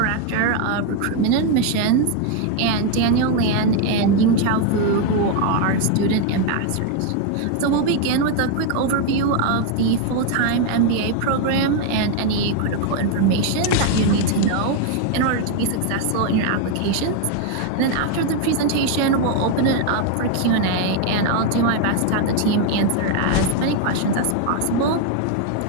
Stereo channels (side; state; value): both; different; correlation 0.01